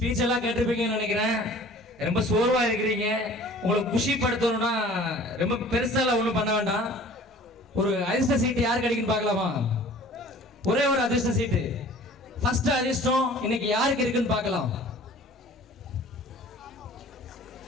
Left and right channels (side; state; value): both; normal; correlation 0.47